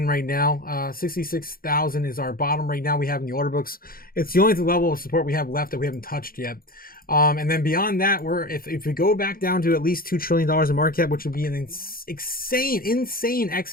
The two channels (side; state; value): right; late; 0.42 ms